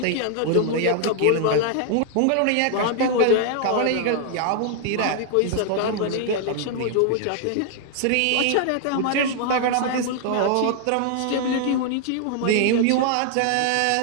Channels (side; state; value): both; different; correlation 0.00